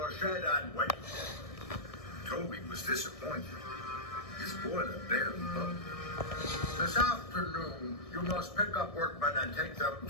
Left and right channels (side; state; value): right; late; 1.6 ms